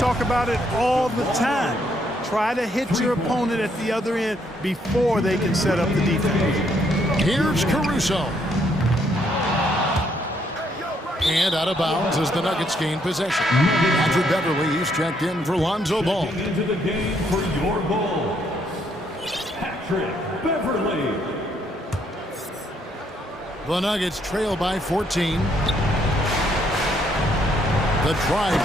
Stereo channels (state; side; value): normal; both; correlation 0.71